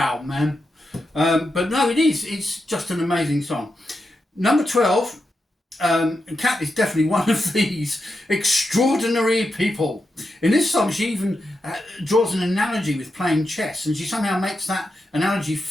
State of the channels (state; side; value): normal; both; correlation 0.87